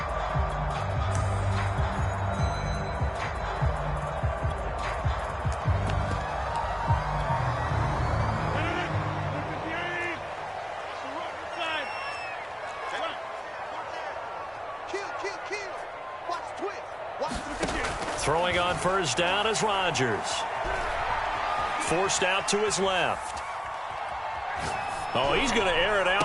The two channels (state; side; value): identical; both; correlation 1.00